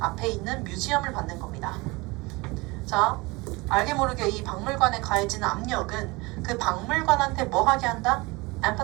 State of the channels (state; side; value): quieter; left; 24.2 dB